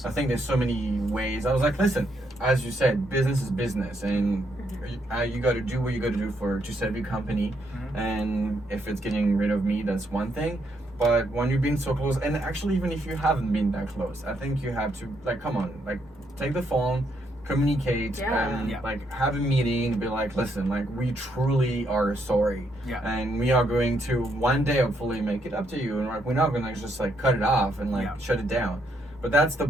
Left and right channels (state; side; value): normal; both; correlation 0.75